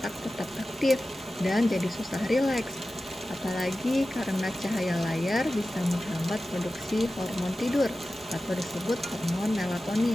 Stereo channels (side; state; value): both; normal; correlation 0.94